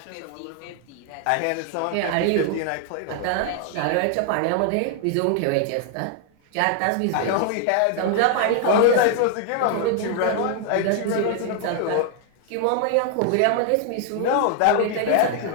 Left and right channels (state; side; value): different; both; correlation 0.00